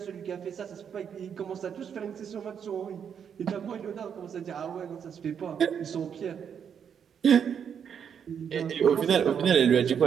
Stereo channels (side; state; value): left; quieter; 7.7 dB